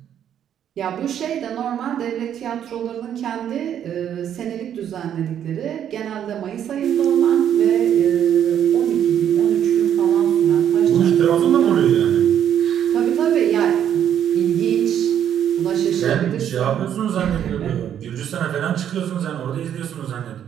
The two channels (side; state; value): left; quieter; 9.7 dB